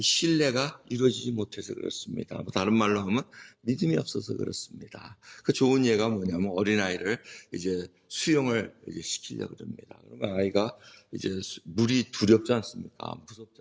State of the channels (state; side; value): identical; both; correlation 1.00